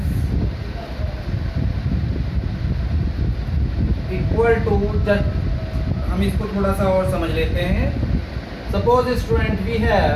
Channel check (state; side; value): identical; both; correlation 1.00